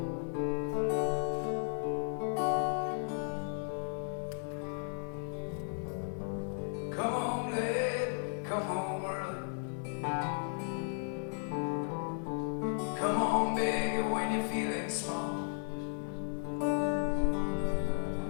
Come on late, come on early. Come on baby when you're feeling small.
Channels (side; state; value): right; silent; digital silence